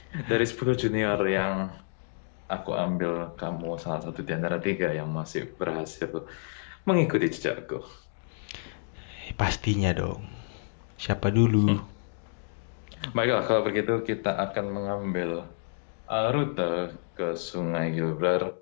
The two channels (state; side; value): silent; right; digital silence